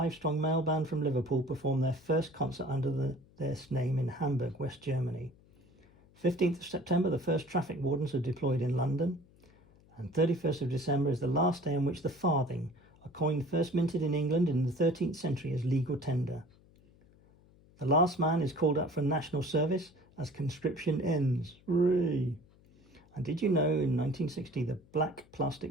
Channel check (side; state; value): left; noise; hum, 28 dB below the sound